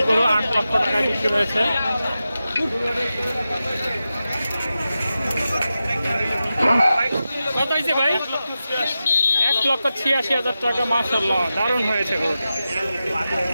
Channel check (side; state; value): both; inverted; correlation -0.92